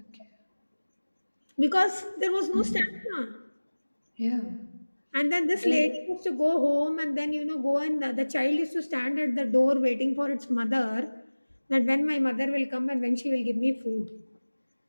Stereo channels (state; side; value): inverted; both; correlation -1.00